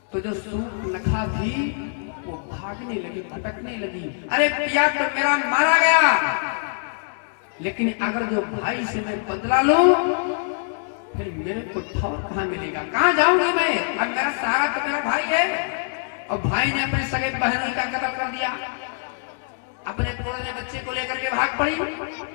तो जो सूर्पनखा थी वो भागने लगी, भटकने लगी। अरे पिया तो मेरा मारा गया, लेकिन अगर जो भाई से मैं बदला लूं फिर मेरे को ठौर कहाँ मिलेगा, कहाँ जाऊंगी मैं। अब मेरा सारा तो मेरा भाई है, और भाई ने अपने सगे बहनोई का कत्ल कर दिया। अपने पुराने बच्चे को लेकर के भाग पड़ी।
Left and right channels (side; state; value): right; silent; digital silence